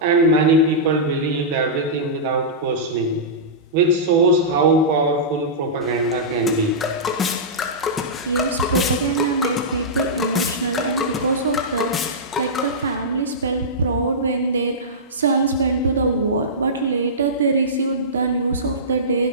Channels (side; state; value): both; normal; correlation -0.16